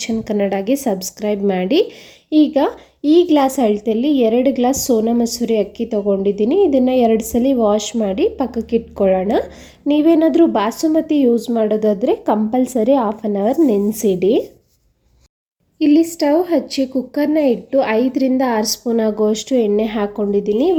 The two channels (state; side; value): identical; both; correlation 1.00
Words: ಕನ್ನಡಗೆ ಸಬ್ಸ್ಕ್ರೈಬ್ ಮಾಡಿ. ಈಗ ಈ ಗ್ಲಾಸ್ ಅಳತೆಯಲ್ಲಿ 2 ಗ್ಲಾಸ್ ಸೋನಾ ಮಸೂರಿ ಅಕ್ಕಿ ತೊಗೊಂಡಿದ್ದೀನಿ. ಇದನ್ನು 2 ಸಲ ವಾಶ್ ಮಾಡಿ ಪಕ್ಕಕ್ಕೆ ಇಟ್ಕೊಳ್ಳೋಣ. ನೀವೇನಾದರೂ ಬಾಸುಮತಿ ಯೂಸ್ ಮಾಡೋದಾದರೆ ಕಂಪಲ್ಸರಿ ಹಾಫ್ ಆನ್ ಅವರ್ ನೆನೆಸಿಡಿ. ಇಲ್ಲಿ ಸ್ಟವ್ ಹಚ್ಚಿ ಕುಕ್ಕರ್ನ ಇಟ್ಟು 5ರಿಂದ 6 ಸ್ಪೂನ್ ಆಗುವಷ್ಟು ಎಣ್ಣೆ ಹಾಕ್ಕೊಂಡಿದ್ದೀನಿ.